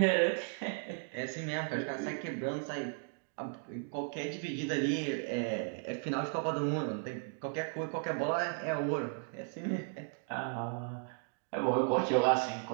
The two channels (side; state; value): left; silent; 54 dB below the other